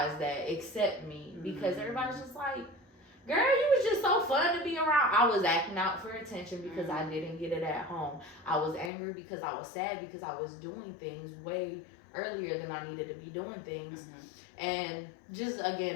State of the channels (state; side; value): drops out; right; at 8.9 s